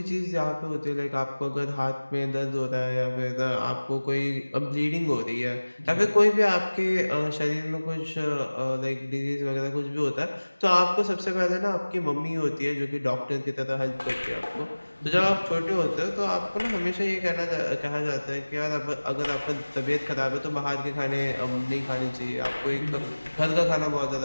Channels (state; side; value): inverted; both; correlation -1.00